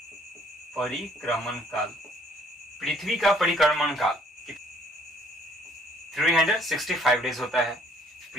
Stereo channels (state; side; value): normal; both; correlation 0.61